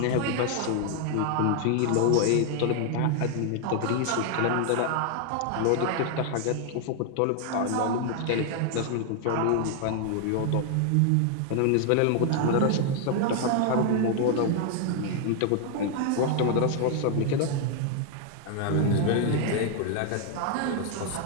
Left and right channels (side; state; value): both; different; correlation 0.00